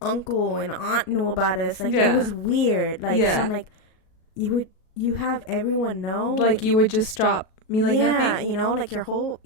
and aunt knew about us. Like, it was weird. Like, so I'm like, you have everyone know, like, you would just drop me like nothing. You know, like, the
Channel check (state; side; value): late; right; 37 ms